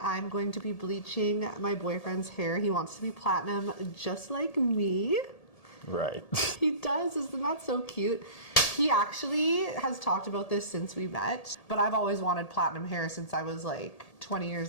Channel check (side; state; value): right; late; 1.8 ms